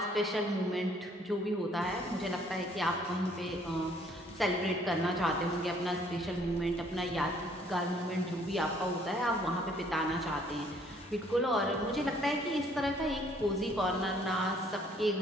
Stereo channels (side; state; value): both; normal; correlation 0.62